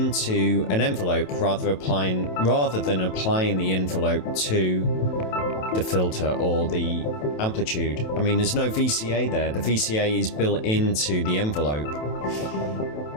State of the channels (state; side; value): late; right; 27 ms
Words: an envelope rather than applying the envelope to the filter or the amplitude. I mean, there's no VCA there. The VCA is built into the envelope.